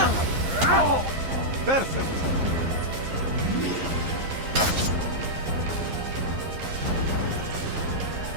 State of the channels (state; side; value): late; left; 11 ms